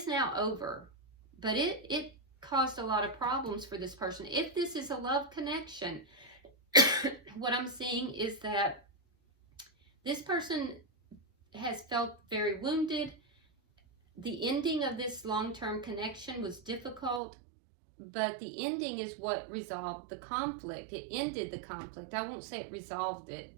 now over, but it caused a lot of problems for this person. If this is a love connection, what I'm seeing is that this person has felt very wounded. The ending of this long-term connection was difficult, but the ending is what resolved the conflict. It ended the conflict. I won't say it resolved it.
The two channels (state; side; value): drops out; left; at 17.2 s